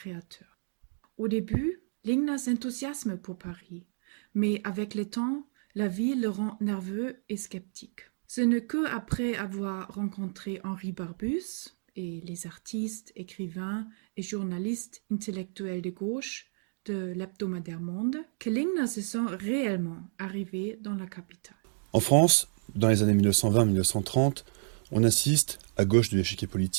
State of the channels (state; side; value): silent; left; digital silence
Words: Au début, Lingner s'enthousiasme pour Paris, mais avec le temps, la ville le rend nerveux et sceptique. Ce n'est qu'après avoir rencontré Henri Barbusse et les artistes, écrivains et journalistes intellectuels de gauche de l'hebdomadaire Monde que Lingner se sent réellement arrivé dans la capitale. En France, dans les années 1920-1930, on assiste, à gauche de l'échiquier